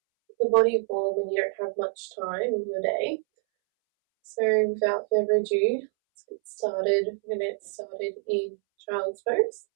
the body warm when you don't have much time in your day. So without further ado, let's get started. We're going to get started in child's pose.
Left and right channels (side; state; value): left; silent; 60 dB below the other